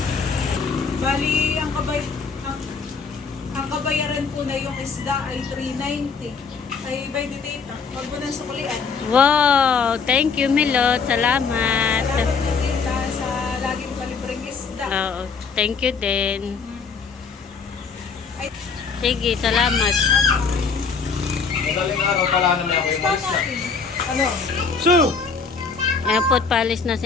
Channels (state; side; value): quieter; right; 5.3 dB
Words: Bali, ang kabayaran po na yung isda ay 390. Ay, by the Tita. Huwag mo nang sukulian. Wow! Thank you, Milot. Salamat. Salamat na Tita sa laging palibreng isda. Oo. Thank you din. Ay, Sige, salamat. Madaling araw pala naman ako yung isda malis na. natin. Ano? So! Ayan po, palis na